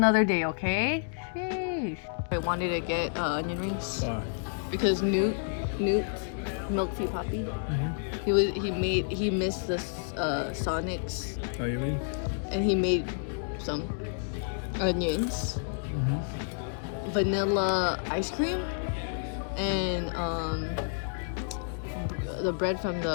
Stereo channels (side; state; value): right; silent; digital silence